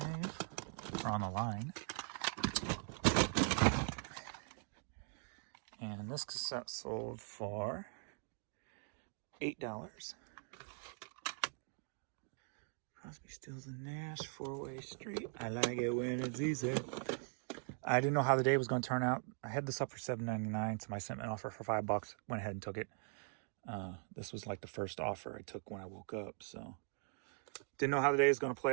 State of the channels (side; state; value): left; silent; 50 dB below the other